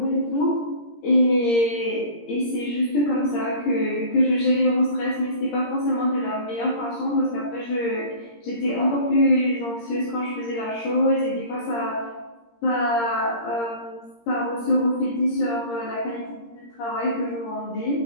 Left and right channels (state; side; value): late; right; 17 ms